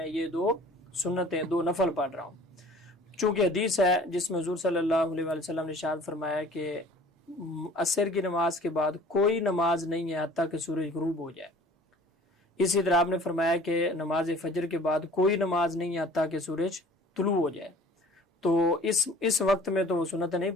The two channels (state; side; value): normal; both; correlation 0.48